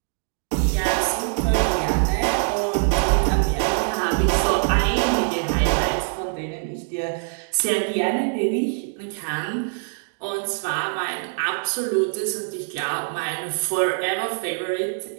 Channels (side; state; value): left; silent; digital silence